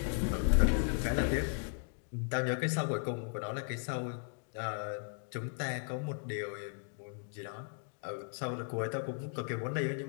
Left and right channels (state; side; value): silent; right; 54 dB below the other